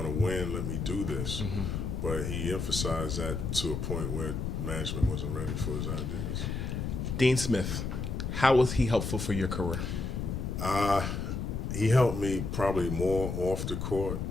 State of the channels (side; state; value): left; noise; rumble, 3 dB below the sound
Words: to win, let me do this. But he emphasized that to a point where management wasn't ready for his ideas. Dean Smith, how was he helpful for your career? He helped me probably more off the court